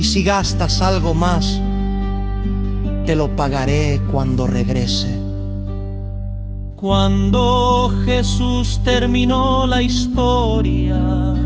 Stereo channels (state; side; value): identical; both; correlation 1.00